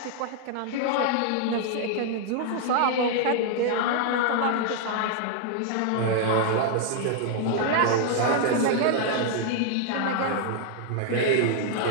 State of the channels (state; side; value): different; both; correlation 0.00